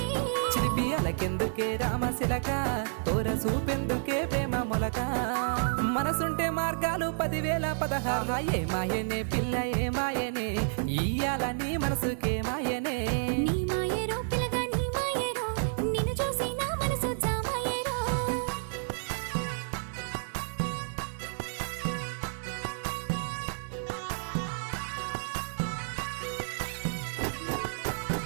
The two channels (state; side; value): silent; left; 58 dB below the other